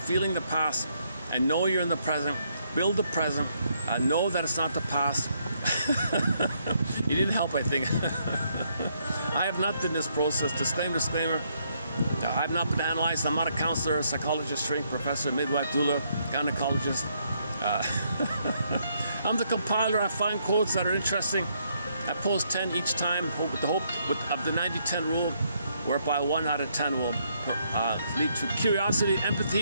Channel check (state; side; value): inverted; both; correlation -0.73